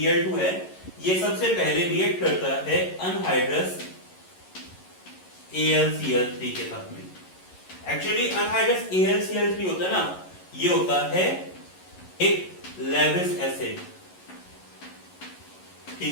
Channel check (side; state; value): right; late; 11 ms